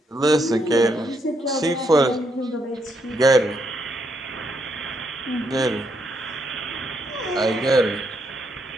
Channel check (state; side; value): normal; both; correlation 0.76